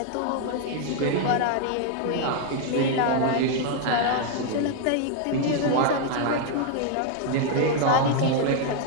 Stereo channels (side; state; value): both; different; correlation 0.00